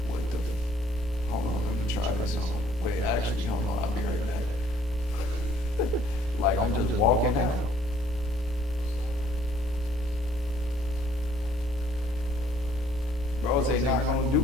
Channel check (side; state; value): both; normal; correlation 0.62